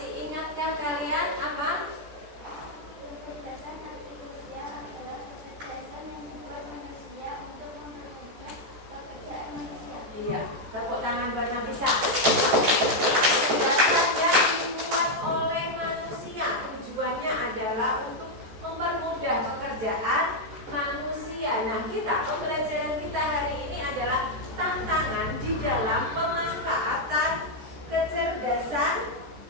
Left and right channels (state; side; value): late; left; 14 ms